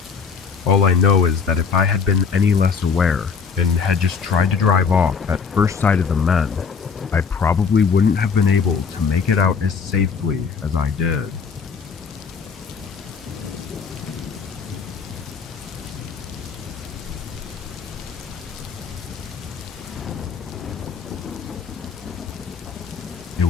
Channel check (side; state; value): right; quieter; 5.7 dB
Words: All I know is that if I had been any less aware and had just tried to drive off at first sight of the men, I probably wouldn't have been able to make it out as safely as I did. It